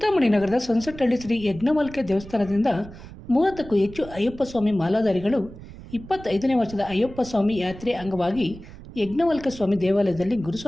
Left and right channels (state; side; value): noise; right; rumble, 16 dB below the sound